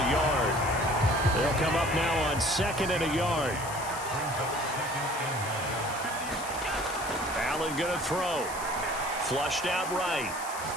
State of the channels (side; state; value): left; noise; hiss, 11 dB below the sound